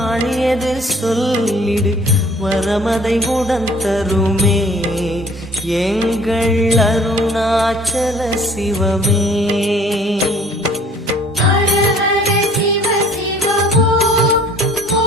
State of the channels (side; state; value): both; normal; correlation 0.54